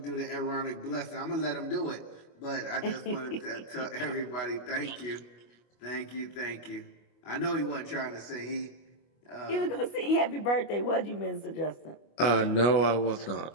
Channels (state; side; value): late; right; 25 ms